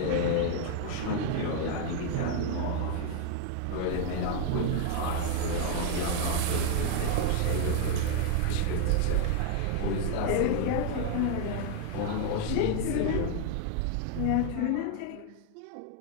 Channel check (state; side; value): different; both; correlation 0.00